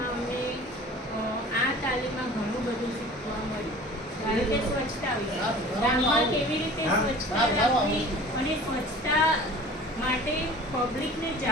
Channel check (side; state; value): both; normal; correlation 0.43